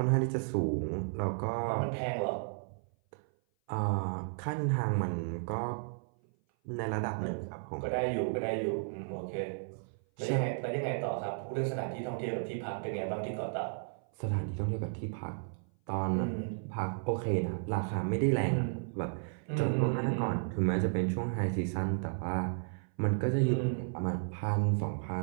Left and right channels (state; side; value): silent; left; 55 dB below the other